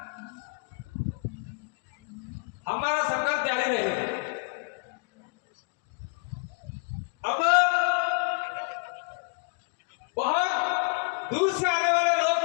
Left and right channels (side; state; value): right; quieter; 36.2 dB